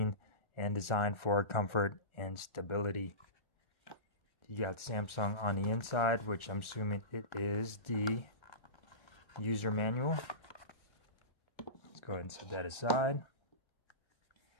and designed for comfort and stability. You got Samsung on the inside, which I'm assuming it is the user manual. Let's go ahead and set that aside.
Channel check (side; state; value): right; late; 1.4 ms